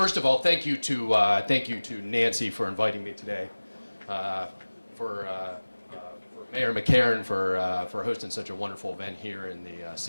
of all, thank you to Nancy for inviting me today. For Mayor McCarron for hosting such a wonderful event here in the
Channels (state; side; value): inverted; both; correlation -1.00